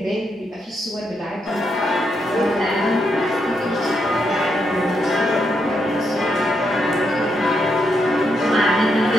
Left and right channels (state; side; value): normal; both; correlation 0.80